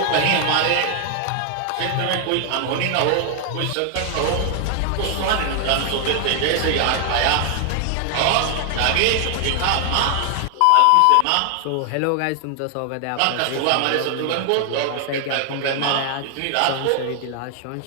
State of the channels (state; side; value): different; both; correlation 0.00